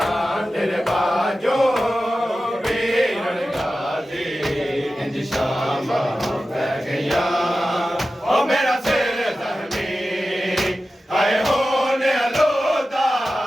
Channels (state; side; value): normal; both; correlation 0.94